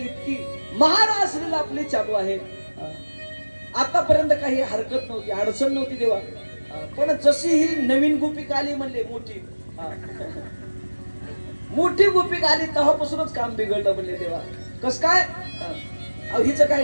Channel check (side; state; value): both; inverted; correlation -1.00